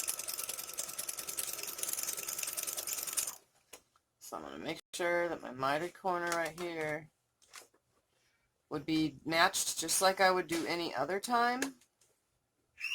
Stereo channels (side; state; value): both; identical; correlation 1.00